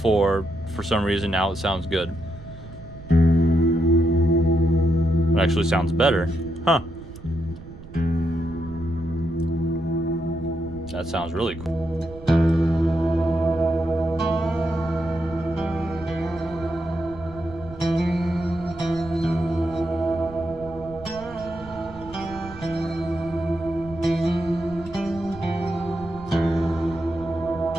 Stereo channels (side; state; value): right; noise; rumble, 16 dB below the sound